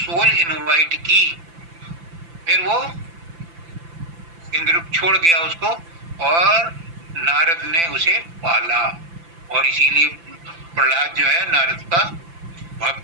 इनवाइट की। फिर वो इंद्र छोड़ गया उसको और नारद ने उसे पाला और इसीलिए प्रहलाद जो है नारद का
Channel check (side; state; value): left; late; 5.9 ms